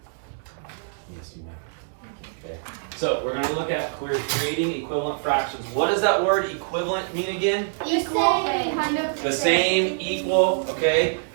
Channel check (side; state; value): left; silent; digital silence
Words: you may. Okay. So we're going to look at creating equivalent fractions. What does that word equivalent mean again? Equal, kind of. The same, equal, okay?